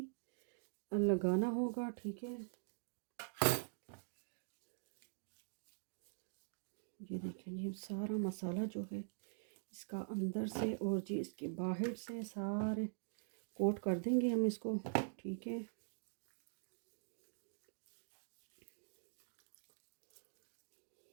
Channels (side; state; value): left; silent; digital silence